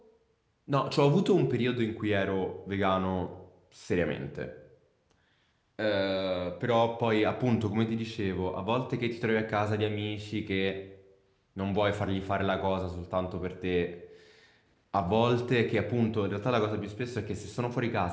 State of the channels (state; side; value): identical; both; correlation 1.00